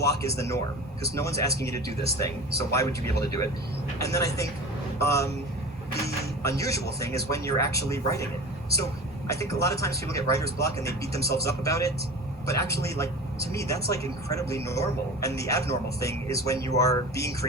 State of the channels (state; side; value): normal; both; correlation 0.35